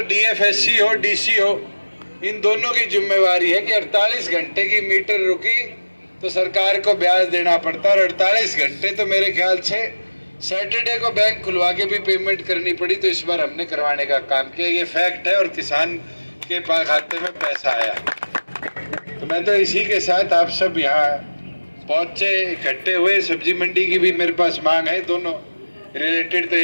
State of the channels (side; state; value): both; inverted; correlation -1.00